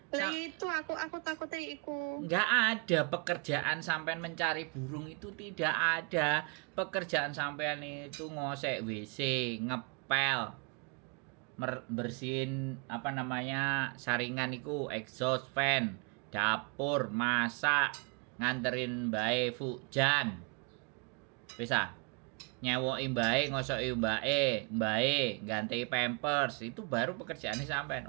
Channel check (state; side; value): quieter; left; 34.3 dB